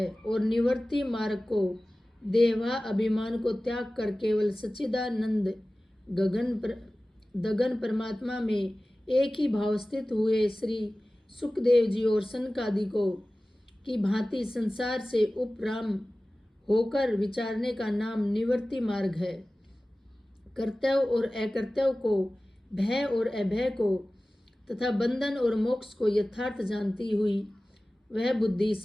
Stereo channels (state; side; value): normal; both; correlation 0.97